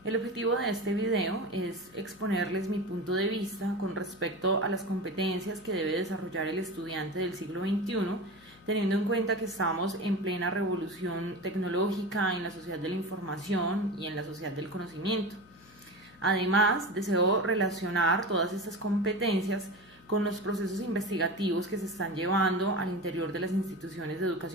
El objetivo de este video es exponerles mi punto de vista con respecto a las competencias que debe desarrollar el estudiante del siglo XXI, teniendo en cuenta que estamos en plena revolución tecnológica en la sociedad de la información y en la sociedad del conocimiento. Además, deseo relacionar todas estas competencias con los procesos investigativos que se están llevando al interior de las instituciones de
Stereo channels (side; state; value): left; noise; hum, 26 dB below the sound